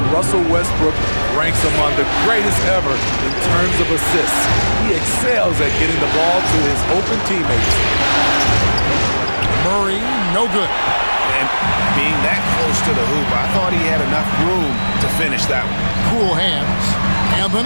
Russell Westbrook ranks among the greatest ever in terms of assists. He excels at getting the ball to his open teammates. Murray, no good. And being that close to the hoop, I thought he had enough room to finish that one. Cool hands. And the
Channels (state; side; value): inverted; both; correlation -1.00